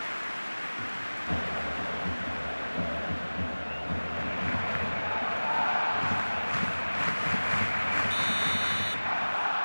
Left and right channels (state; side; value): inverted; both; correlation -1.00